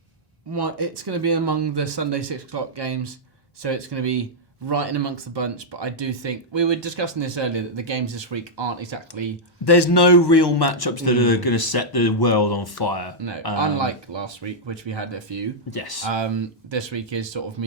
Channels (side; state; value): both; normal; correlation -0.06